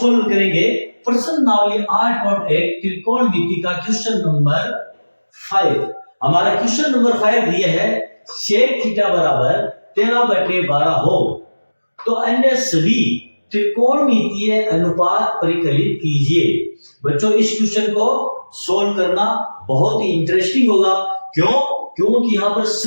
करेंगे प्रश्न नावली 8.1 त्रिकोणमिति का क्वेश्चन नंबर 5। हमारा क्वेश्चन नंबर 5 दिया है sec थीटा बराबर 13/12 हो तो अन्य सभी त्रिकोणमितीय अनुपात परिकलित कीजिए। बच्चों इस क्वेश्चन को सोल्व करना बहुत ही इंटरेस्टिंग होगा। क्यों? क्योंकि यहाँ पर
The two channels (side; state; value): both; inverted; correlation -1.00